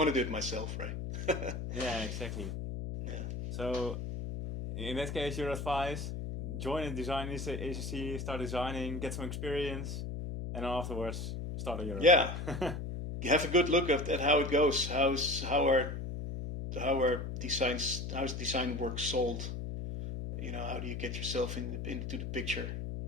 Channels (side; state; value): left; noise; hum, 5 dB below the sound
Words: to do it myself, right? Yeah, exactly. Yeah. So, in that case, your advice: join a design agency, start designing, get some experience, and afterwards start on your own. Yeah. You have a good look at how it goes. How are design work sold? How do you get yourself into the picture?